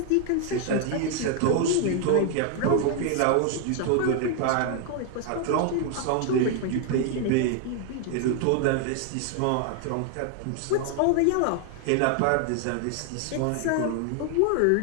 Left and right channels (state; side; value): different; both; correlation 0.00